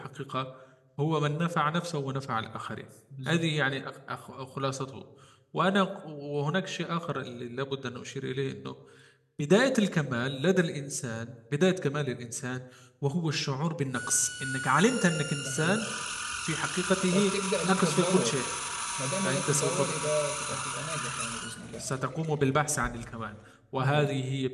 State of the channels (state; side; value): identical; both; correlation 1.00